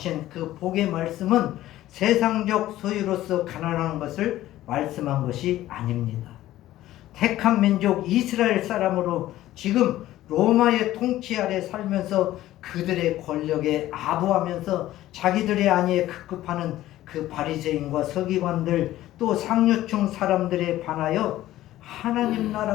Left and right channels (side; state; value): right; quieter; 14.7 dB